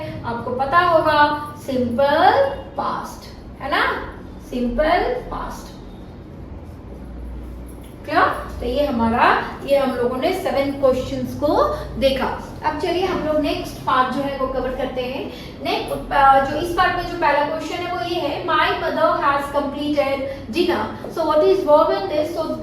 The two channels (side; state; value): both; identical; correlation 1.00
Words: आपको पता होगा simple past, है ना? simple past. Clear? तो ये हम लोगों ने 7 क्वेश्चंस को देखा। अब चलिए हम लोग नेक्स्ट पार्ट जो है वो कवर करते हैं। नेक्स्ट जो इस पार्ट में जो पहला क्वेश्चन है वो ये है, my mother has completed dinner. So what is verb in this? So